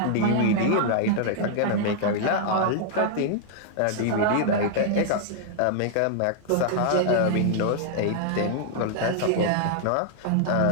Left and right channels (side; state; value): both; different; correlation -0.01